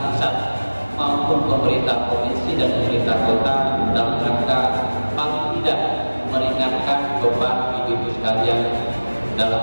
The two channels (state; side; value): inverted; both; correlation -1.00